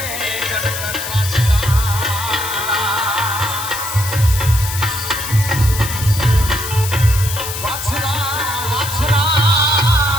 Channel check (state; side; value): noise; left; hiss, 7 dB below the sound